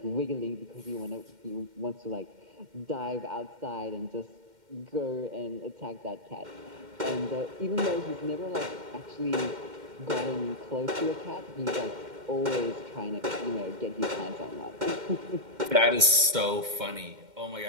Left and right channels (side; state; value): left; late; 2.1 ms